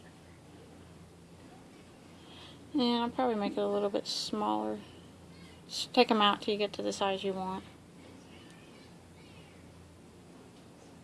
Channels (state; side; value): identical; both; correlation 1.00